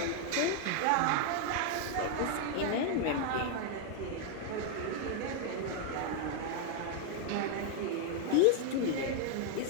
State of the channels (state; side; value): different; both; correlation 0.00